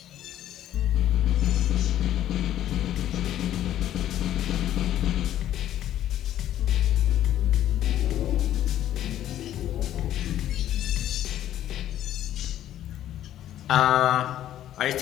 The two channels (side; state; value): right; quieter; 12.0 dB